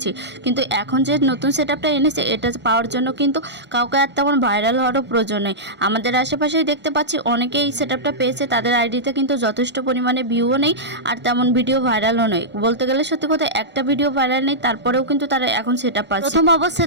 কিন্তু এখন যে নতুন সেটআপটা এনেছে এটা পাওয়ার জন্য কিন্তু কাউকে আর তেমন ভাইরাল হওয়ারও প্রয়োজন নেই। আমাদের আশেপাশেই দেখতে পাচ্ছি অনেকেই এই সেটআপটা পেয়েছে, তাদের আইডিতে কিন্তু যথেষ্ট পরিমাণে ভিউও নেই আর তেমন ভিডিও ভাইরালও নেই। বলতে গেলে সত্যি কথা, একটা ভিডিও ভাইরাল নেই, তারপরেও কিন্তু তারা এখন সেটআপ পাচ্ছে। প্রথম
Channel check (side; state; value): left; late; 1.4 ms